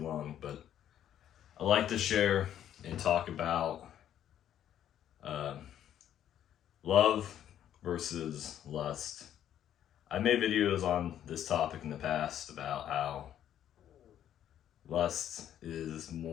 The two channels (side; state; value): right; quieter; 10.7 dB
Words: but I like to share and talk about uh, love versus lust. I made videos on this topic in the past about how lust is